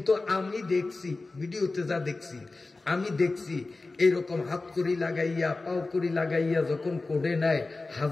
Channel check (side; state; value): right; quieter; 3.4 dB